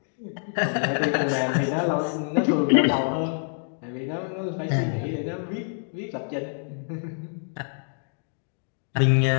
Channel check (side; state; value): right; silent; digital silence